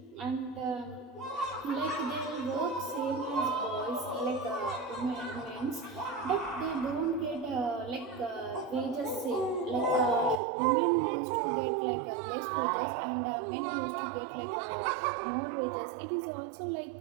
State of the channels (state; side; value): drops out; left; at 10.4 s